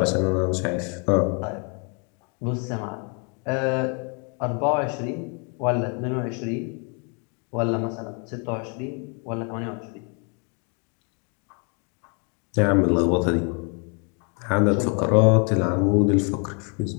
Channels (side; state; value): right; quieter; 36.6 dB